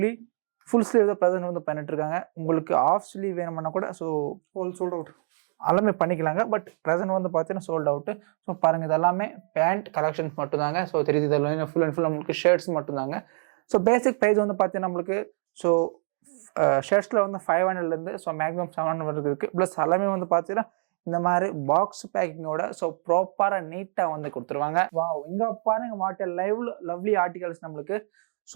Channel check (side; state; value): left; silent; digital silence